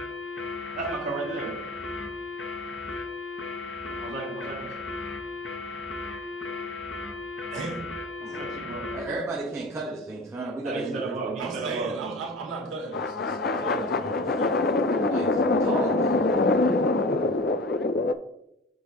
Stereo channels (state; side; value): normal; both; correlation 0.36